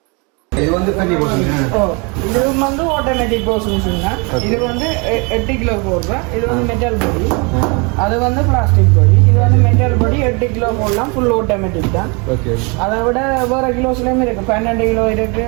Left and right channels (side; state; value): left; quieter; 31.1 dB